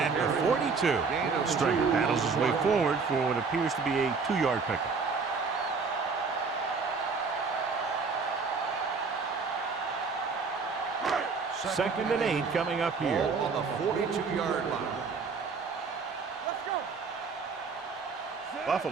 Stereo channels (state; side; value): quieter; left; 4.9 dB